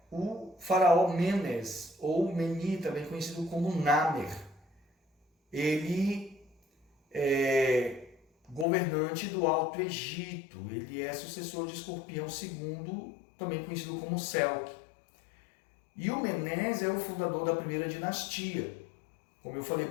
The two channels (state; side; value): drops out; right; at 8.7 s